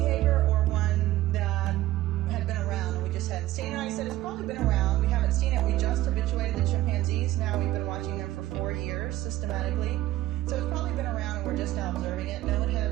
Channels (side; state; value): left; quieter; 15.5 dB